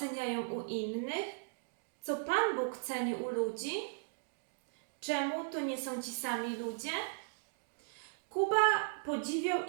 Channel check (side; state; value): left; silent; digital silence